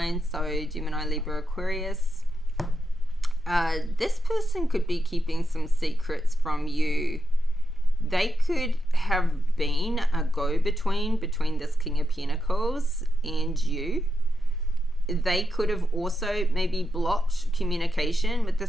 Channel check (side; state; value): both; normal; correlation 0.87